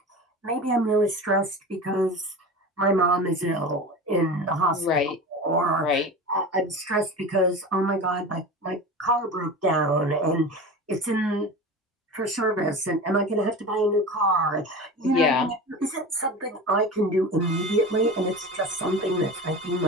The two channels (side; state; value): both; normal; correlation 0.31